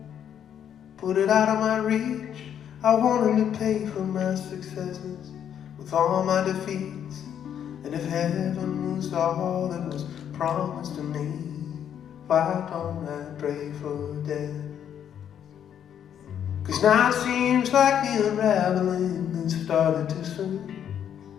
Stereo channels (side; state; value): right; quieter; 9.2 dB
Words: put it out of my reach. I wanted to pay for my successes with all my defeats. And if heaven was all that was promised to me, why don't I pray for death? 'Cause now it seems like the unraveling has started too soon.